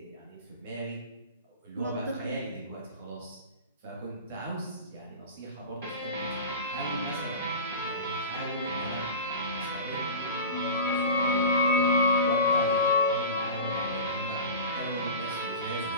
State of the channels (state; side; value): inverted; both; correlation -0.32